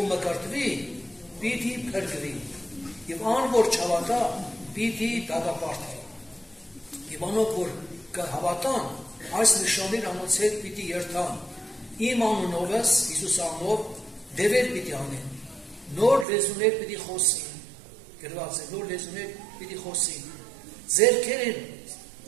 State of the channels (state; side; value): drops out; left; at 16.2 s